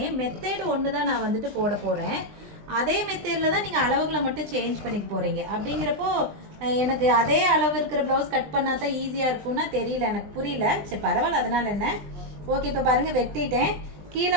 மெத்தேடு ஒன்று தான் நான் வந்துட்டு போட போகிறேன். அதே மெத்தேடில் தான் நீங்கள் அளவுகளை மட்டும் சேஞ்ச் பண்ணிக்க போகிறீங்க. அப்படிங்கிறப்போ எனக்கு அதே அளவு இருக்கிற ப்ளவுஸ் கட் பண்ணால் தான் ஈஸியாக இருக்கும்னா தெரியல, எனக்கு புரியல. சரி பரவாயில்ல, அதனால் என்ன. ஓகே, இப்போ பாருங்கள் வெட்டிட்டேன்.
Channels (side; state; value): left; late; 20 ms